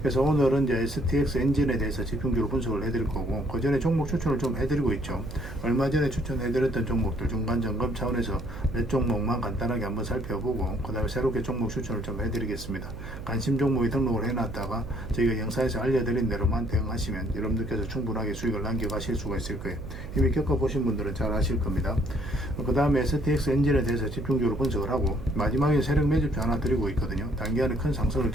그래서 오늘은 이제 STX 엔진에 대해서 집중적으로 분석을 해드릴 거고, 그 전에 종목 추천을 좀 해드리고 있죠. 얼마 전에 추천해드렸던 종목들 중간 점검 차원에서 몇 종목만 간단하게 한번 살펴보고, 그 다음에 새롭게 종목 추천을 좀 해드리겠습니다. 관심 종목이 등록을 해놨다가 저희가 영상에서 알려드린 대로만 대응하시면 여러분들께서 충분하게 수익을 남겨가실 수가 있을 거예요. 이미 겪어보신 분들은 잘 아실 겁니다. 그 다음에 STX 엔진에 대해서 집중적으로 분석을 하고, 마지막에 세력 매집표 하나 드리고 있거든요. 단기간에 큰 상승을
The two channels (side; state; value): right; noise; hum, 11 dB below the sound